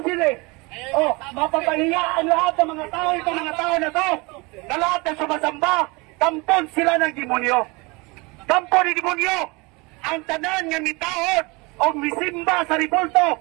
yun mapapahiya ang lahat ng mga tao, itong mga tao na to, na lahat ng sumasamba, kampon sila ng demonyo. Kampon ni demonyo. Ang tanan nga mitahod o misimba sa ripulto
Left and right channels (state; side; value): quieter; left; 26.4 dB